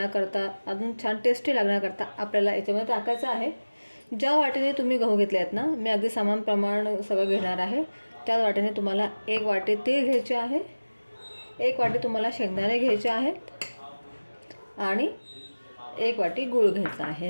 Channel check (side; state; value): both; inverted; correlation -1.00